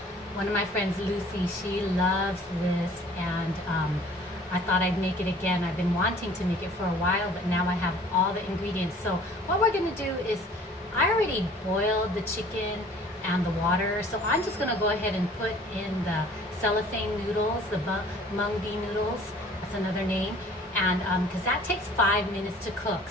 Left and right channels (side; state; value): both; normal; correlation 0.51